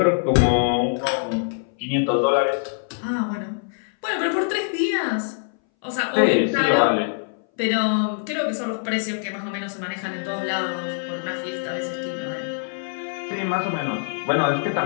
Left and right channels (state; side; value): silent; right; 60 dB below the other